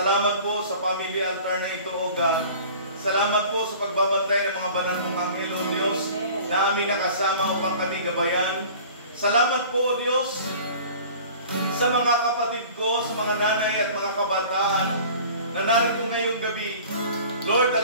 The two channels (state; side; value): inverted; both; correlation -0.44